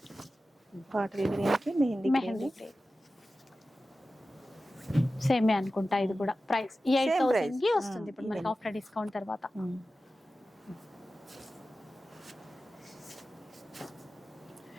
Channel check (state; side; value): normal; both; correlation 0.94